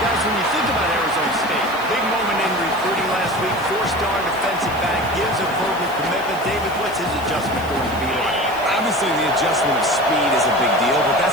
when you think about Arizona State, big moment in recruiting last week, 4-star defensive back, gives a verbal commitment. David, what's his adjustment going to be like? Obviously, the adjustment of speed is a big deal, but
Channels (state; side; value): noise; left; hiss, 19 dB below the sound